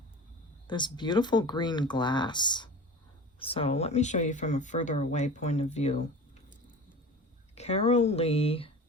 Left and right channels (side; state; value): both; normal; correlation 0.36